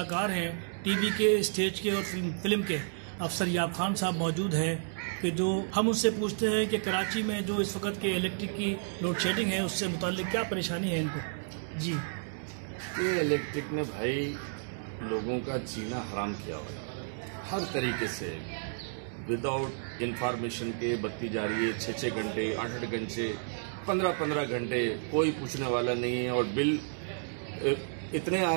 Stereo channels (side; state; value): left; silent; digital silence